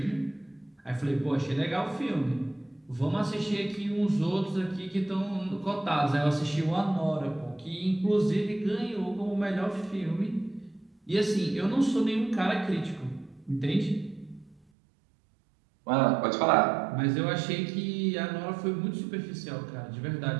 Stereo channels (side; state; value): left; drops out; at 14.6 s